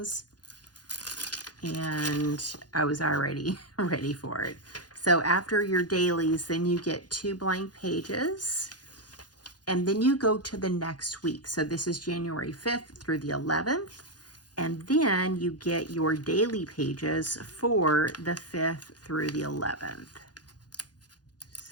and I was already ready for it. So after your dailies, then you get 2 blank pages, and then you go to the next week. So this is January 5th through the 11th, and then you get your daily pages for the 5th through the 11th.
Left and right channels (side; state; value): right; late; 0.69 ms